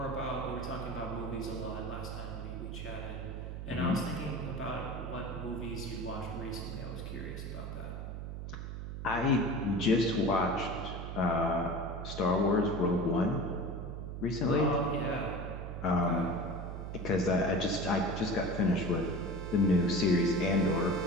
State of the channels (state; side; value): noise; right; hum, 7 dB below the sound